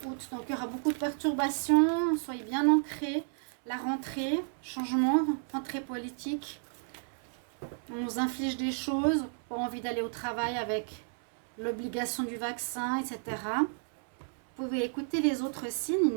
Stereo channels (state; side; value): silent; left; 56 dB below the other